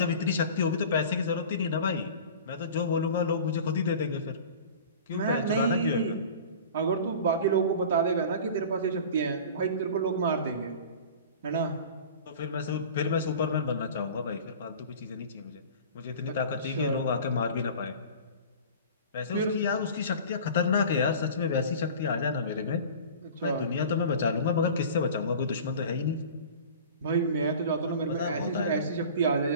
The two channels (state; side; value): inverted; both; correlation -0.39